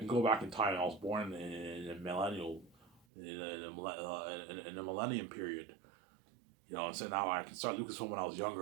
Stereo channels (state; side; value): drops out; left; at 3.0 s